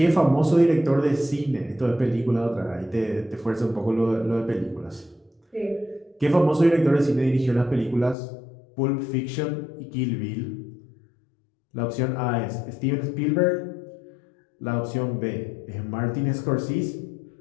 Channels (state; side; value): drops out; right; at 8.2 s